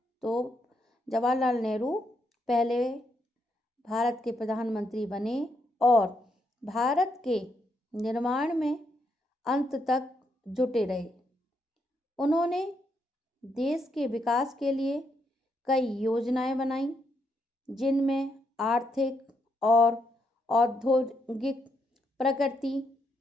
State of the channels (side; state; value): both; normal; correlation 0.78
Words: तो जवाहरलाल नेहरू पहले भारत के प्रधानमंत्री बने और भारत के निर्माण में अंत तक जुटे रहे। उन्होंने देश के विकास के लिए कई योजनाएं बनाई, जिनमें आर्थिक और औद्योगिक प्रगति